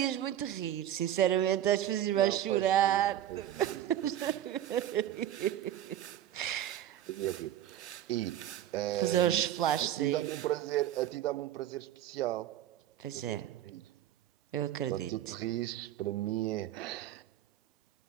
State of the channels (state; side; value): quieter; left; 11.9 dB